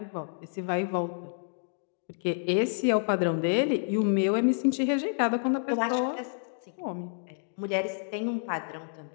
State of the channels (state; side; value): silent; right; digital silence